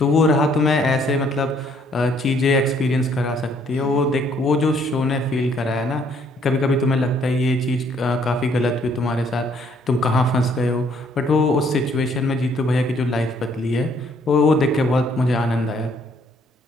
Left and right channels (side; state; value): both; normal; correlation 0.65